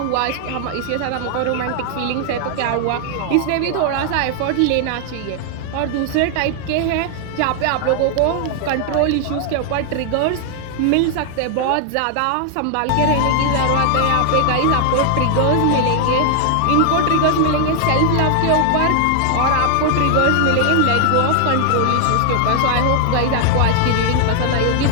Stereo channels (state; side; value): different; both; correlation 0.00